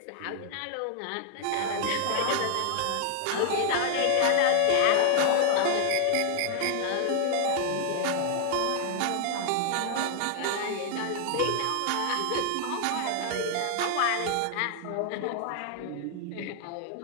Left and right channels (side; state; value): both; different; correlation 0.00